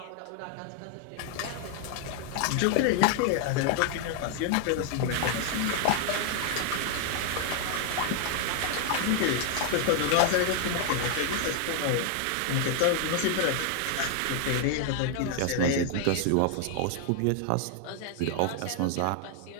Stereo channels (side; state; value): both; different; correlation 0.00